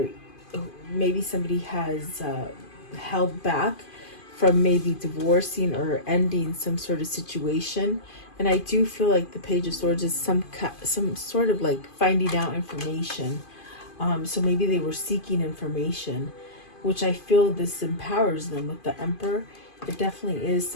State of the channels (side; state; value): right; late; 2.5 ms